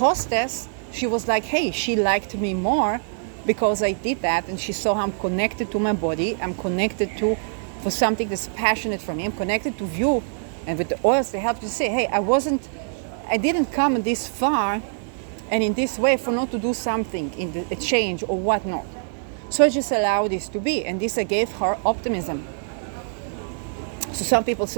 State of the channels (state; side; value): silent; left; digital silence